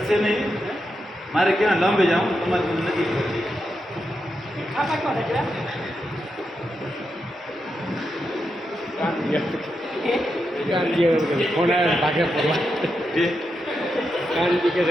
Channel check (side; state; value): both; normal; correlation 0.86